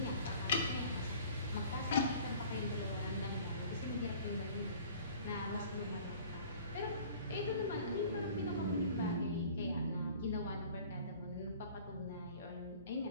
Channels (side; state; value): both; inverted; correlation -0.48